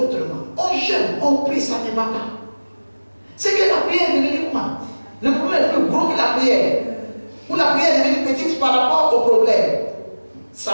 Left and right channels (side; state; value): both; inverted; correlation -1.00